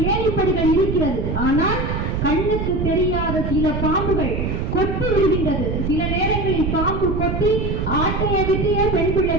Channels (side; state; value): right; noise; rumble, 1 dB below the sound